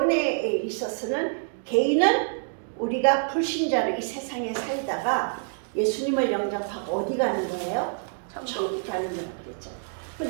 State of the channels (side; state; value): left; silent; digital silence